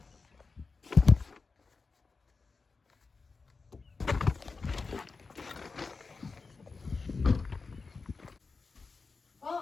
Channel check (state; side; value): quieter; right; 4.4 dB